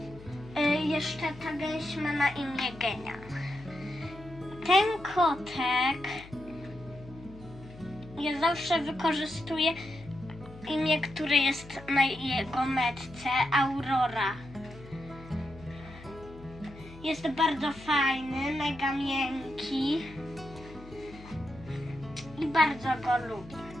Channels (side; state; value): left; noise; hum, 18 dB below the sound